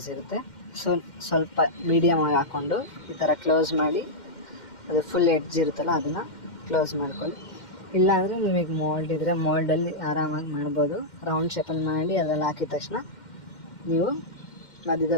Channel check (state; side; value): late; right; 2.1 ms